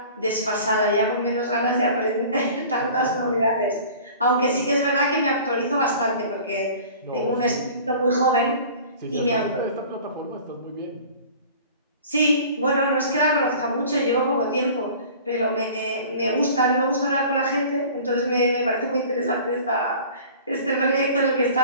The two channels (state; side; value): inverted; both; correlation -0.44